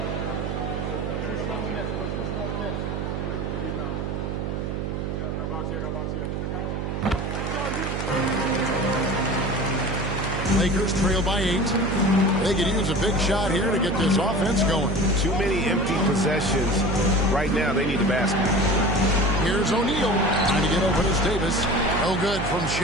Lakers trail by 8. They could use a big shot here to get this offense going. Too many empty possessions. Right now, they need a basket. Here's O'Neal trying to get open as Davis. No good from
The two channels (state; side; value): noise; right; hum, 3 dB below the sound